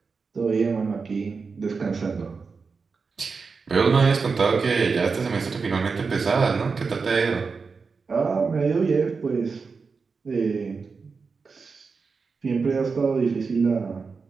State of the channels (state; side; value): quieter; left; 4.9 dB